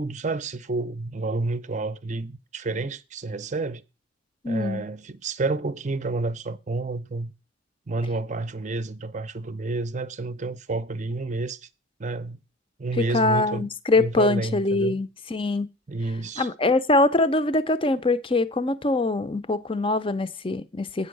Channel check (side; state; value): both; normal; correlation 0.42